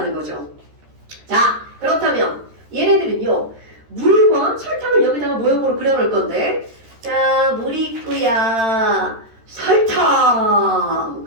거죠. 자, 그렇다면 얘네들은요 물과 설탕을 여기다가 모형으로 그려놓을 건데, 자, 물이 있고야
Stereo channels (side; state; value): left; late; 13 ms